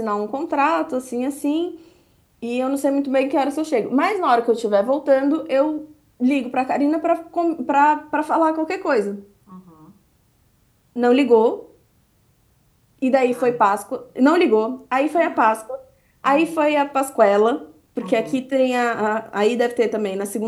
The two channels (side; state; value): both; identical; correlation 1.00